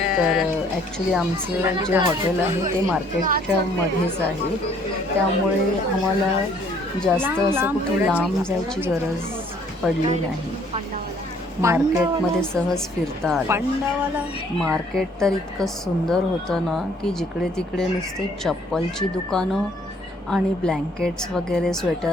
ॲक्च्युली आमचं जे हॉटेल आहे ते मार्केटच्या मध्येच आहे, त्यामुळे आम्हाला जास्त असं कुठे लांब जायची गरज पडली नाही. मार्केटमध्ये सहज फिरता आलं. मार्केट तर इतकं सुंदर होतं ना की जिकडे तिकडे नुसते चप्पलची दुकानं आणि ब्लँकेट्स वगैरे,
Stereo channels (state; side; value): normal; both; correlation 0.61